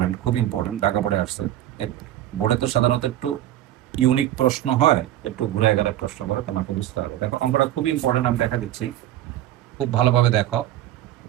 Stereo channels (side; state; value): left; quieter; 12.9 dB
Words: খুব ইম্পর্টেন্ট, ঢাকা বোর্ডে আসছে। বোর্ডে তো সাধারণত একটু ইউনিক প্রশ্ন হয়, একটু ঘুরে গেলে প্রশ্ন করে, তোমাকে বুঝতে হবে। দেখো অঙ্কটা খুবই ইম্পর্টেন্ট, আমি দেখা দিচ্ছি, খুব ভালোভাবে দেখো।